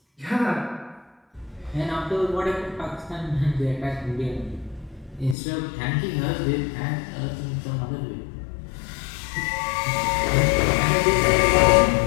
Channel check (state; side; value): drops out; right; at 5.4 s